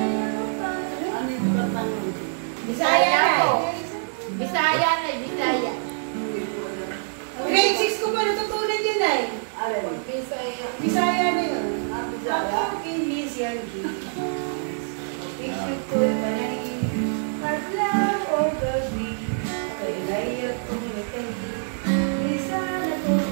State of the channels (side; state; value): left; silent; digital silence